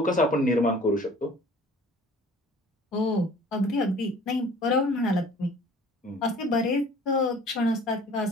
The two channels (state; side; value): normal; both; correlation 0.49